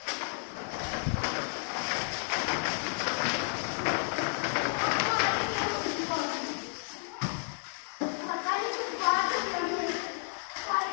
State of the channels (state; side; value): silent; right; 57 dB below the other